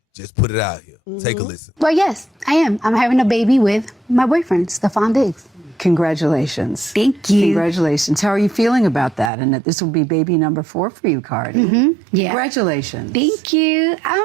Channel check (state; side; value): drops out; left; at 9.3 s